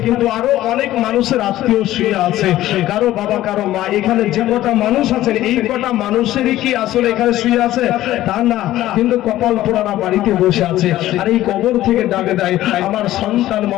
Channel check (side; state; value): right; quieter; 14.6 dB